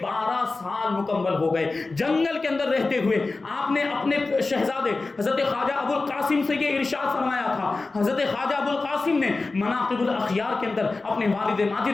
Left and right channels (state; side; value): quieter; right; 3.6 dB